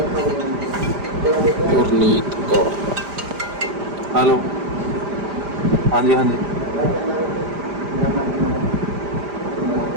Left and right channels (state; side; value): late; left; 5.0 ms